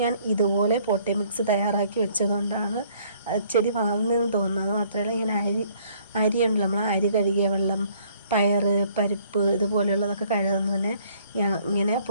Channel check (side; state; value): both; inverted; correlation -0.61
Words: ഞാൻ ഇതുപോലെ പോട്ടി മിക്സ് തയ്യാറാക്കി വെച്ചതുകൊണ്ടാണ് ചെടി വളർന്നതെന്ന് തോന്നുന്നത്. മാത്രമല്ല ഇങ്ങനെ അരിയുണ്ടല്ലോ, നമ്മൾ അരി കഴുകിയ വെള്ളം, പയറ്, പരിപ്പ് ഇതുപോലെയുള്ളതൊക്കെ കഴുകുന്നതിന് ഞാൻ ഇങ്ങനെ